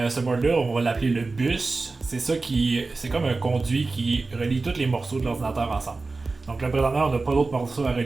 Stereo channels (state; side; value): quieter; left; 3.7 dB